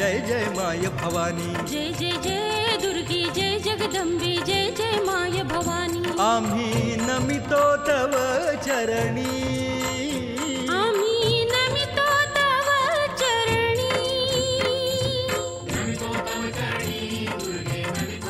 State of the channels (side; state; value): both; identical; correlation 1.00